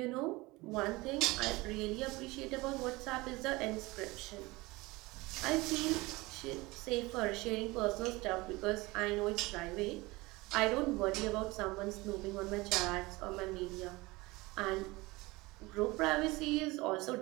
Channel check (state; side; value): quieter; left; 22.2 dB